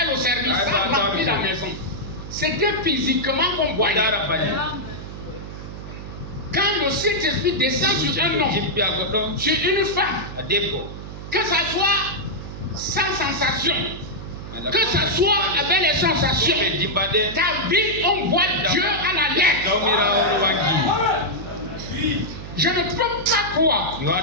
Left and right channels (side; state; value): right; noise; hum, 11 dB below the sound